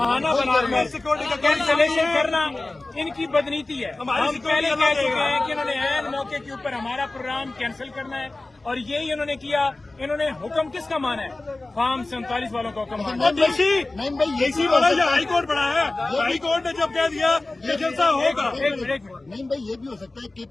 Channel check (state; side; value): quieter; right; 3.0 dB